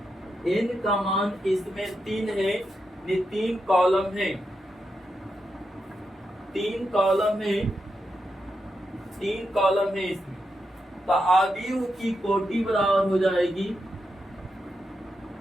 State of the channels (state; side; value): normal; both; correlation 0.85